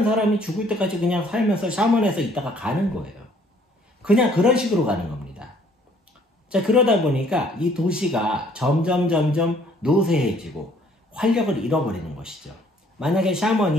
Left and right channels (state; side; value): normal; both; correlation 0.61